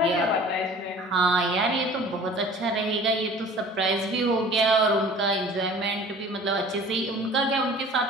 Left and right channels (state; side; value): normal; both; correlation 0.46